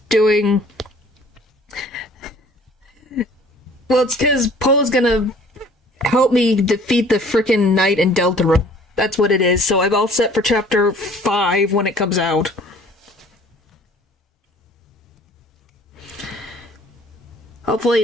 doing... Well, it's because Poe's gonna help me defeat the frickin' knight in Deltarune. That's what it is, so I'm all set for chapter 5 when it comes out. Hopefully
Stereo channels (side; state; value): both; normal; correlation 0.53